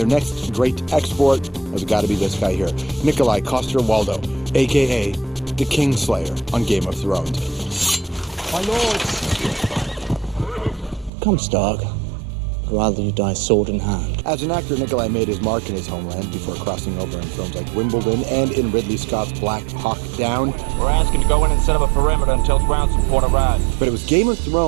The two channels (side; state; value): left; drops out; at 11.1 s